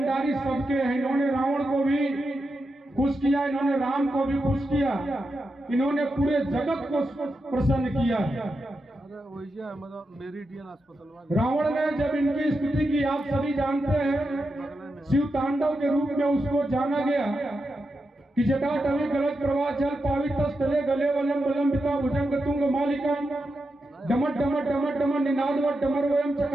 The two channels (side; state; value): both; normal; correlation 0.88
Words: सबके हैं। इन्होंने रावण को भी खुश किया, इन्होंने राम को भी खुश किया, इन्होंने पूरे जगत को प्रसन्न किया। रावण ने जब इनकी स्तुति की, आप सभी जानते हैं, शिव तांडव के रूप में उसको जाना गया कि जटाटवी गलत प्रवाह जल पावित स्थले गले वलम वलंबिता भुजंग तुंग मालिका डमट डमट डमट डमट निनादवट डमरवयम